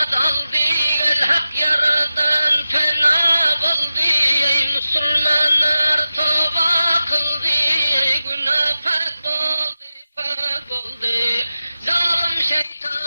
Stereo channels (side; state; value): both; inverted; correlation -0.93